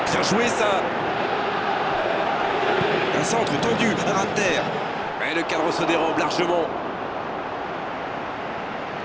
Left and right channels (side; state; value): both; identical; correlation 1.00